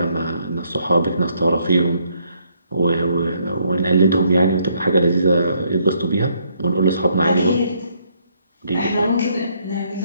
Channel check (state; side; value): inverted; both; correlation -0.71